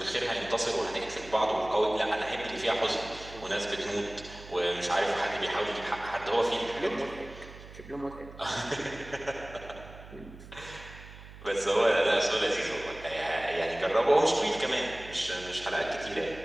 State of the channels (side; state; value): right; noise; hum, 17 dB below the sound